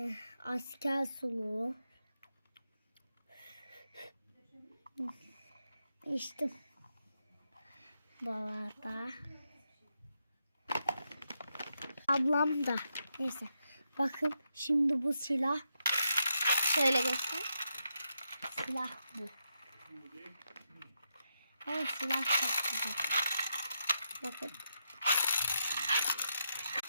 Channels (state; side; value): inverted; both; correlation -0.83